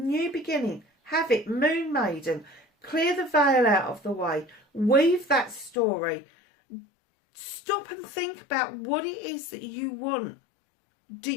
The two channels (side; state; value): right; drops out; at 5.8 s